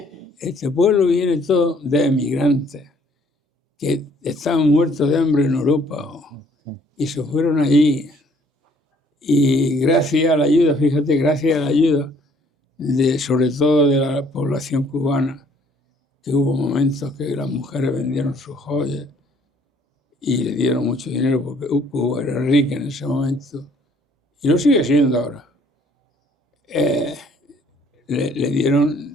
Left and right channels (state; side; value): normal; both; correlation 0.61